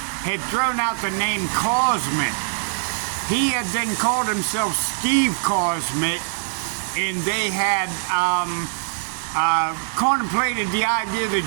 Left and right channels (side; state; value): left; silent; digital silence